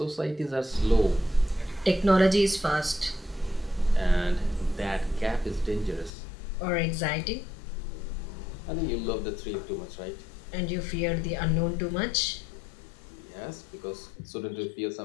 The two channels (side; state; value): right; drops out; at 6.1 s